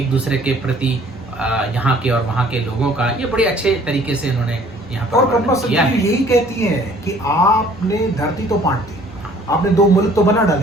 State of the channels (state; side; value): normal; both; correlation 0.56